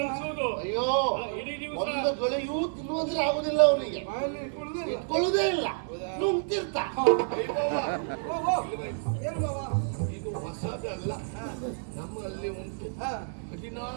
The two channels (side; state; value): left; silent; 58 dB below the other